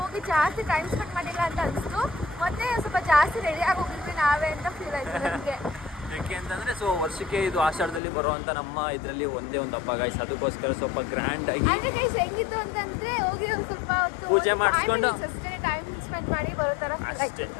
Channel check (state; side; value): drops out; right; at 8.0 s